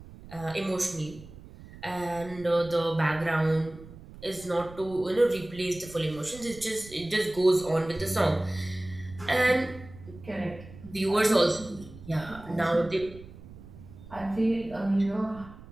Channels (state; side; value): noise; right; rumble, 17 dB below the sound